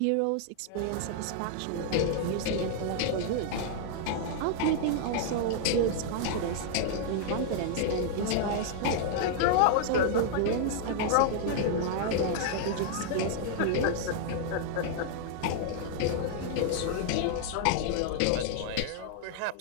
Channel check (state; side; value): different; both; correlation -0.01